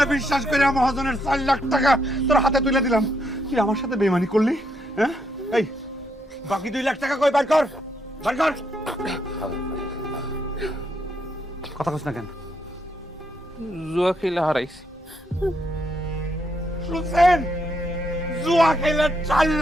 বিশ্বাস করে মহাজনের 4 লাখ টাকা তোর হাতে তুলে দিলাম, তুই আমার সাথে বেইমানি করলি? হ্যাঁ, এই বাকি 2 লাখ টাকা কই? বার কর, বার কর। কথা কস না কেন? জুয়া খেলে হারাইছি। শুনছেন, জুয়া খেলে 4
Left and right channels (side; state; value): both; normal; correlation 0.76